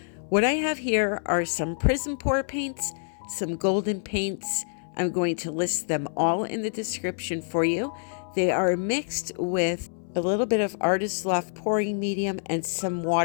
I have here are some Prizm pour paints, some golden paints. I'm going to list them all in the description for you. They are mixed with a little bit of Artist Loft pouring medium and some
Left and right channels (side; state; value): right; silent; 60 dB below the other